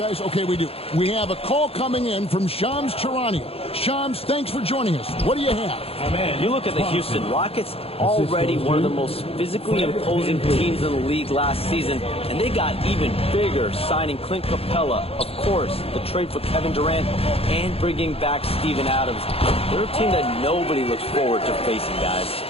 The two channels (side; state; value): right; late; 0.28 ms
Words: Okay, we do. We have a call coming in from Shams Charania. Shams, thanks for joining us. What do you have? Oh, man, you look at the Houston Rockets, already one of the most physically imposing teams in the league last season, and they got even bigger, signing Clint Capella, of course, the trade for Kevin Durant, and bringing back Steven Adams. They're a team that nobody looks forward to facing, guys.